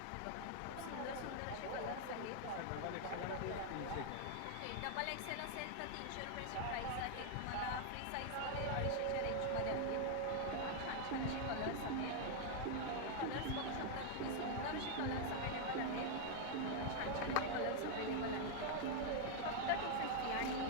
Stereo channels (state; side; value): different; both; correlation 0.00